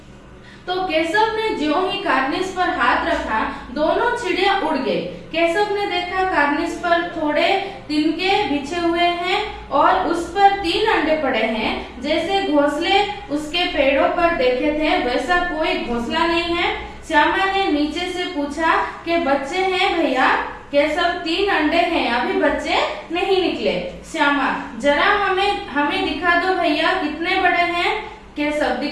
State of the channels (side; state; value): both; identical; correlation 1.00